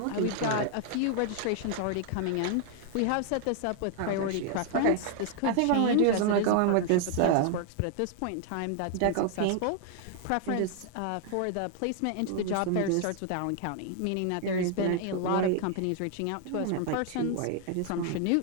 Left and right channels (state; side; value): different; both; correlation 0.00